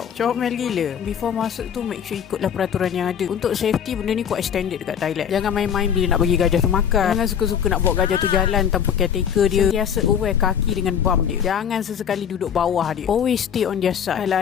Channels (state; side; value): quieter; right; 8.2 dB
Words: Comel gila. Before masuk tu, make sure ikutlah peraturan yang ada. Untuk safety, benda ni quite standard dekat Thailand. Jangan main-main bila nak bagi gajah tu makan. Jangan suka-suka nak bawa gajah tu jalan tanpa caretaker dia. Sentiasa aware kaki dengan bum dia. Jangan sesekali duduk bawah dia. Always stay on their side.